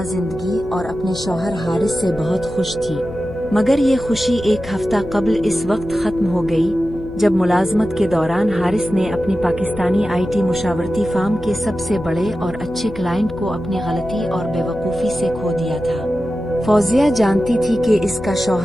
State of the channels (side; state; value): left; noise; hum, 15 dB below the sound